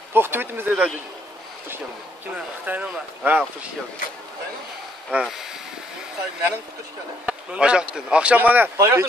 To'xtab etimiz deydi. Xush keldi. Kim? Xitoynimi? Ha, xush keldi. Ha. Mening xush keldi. Aşaktın. Akşam bana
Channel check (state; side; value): normal; both; correlation 0.69